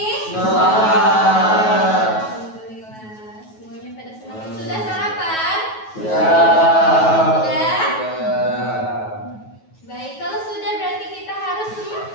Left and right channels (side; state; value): right; late; 9.3 ms